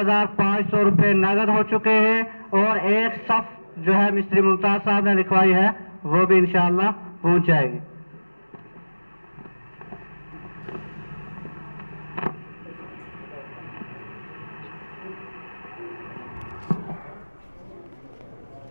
روپے نقد ہو چکے ہیں، اور ایک صف جو ہے مستری ممتاز صاحب نے لکھوائی ہے وہ بھی انشاءاللہ پہنچ جائے گی۔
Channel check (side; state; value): both; inverted; correlation -1.00